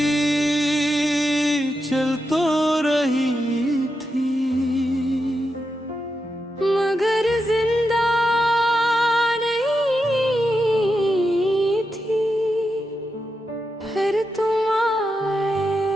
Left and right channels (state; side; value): normal; both; correlation 0.87